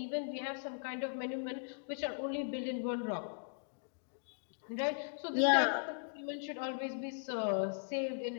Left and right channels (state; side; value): silent; right; digital silence